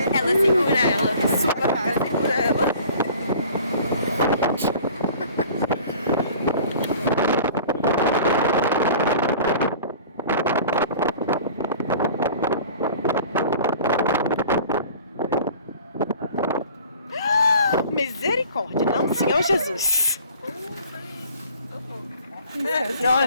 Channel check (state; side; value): inverted; both; correlation -0.47